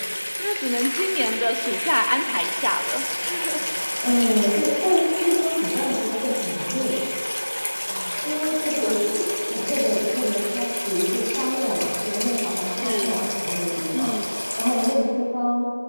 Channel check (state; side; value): inverted; both; correlation -1.00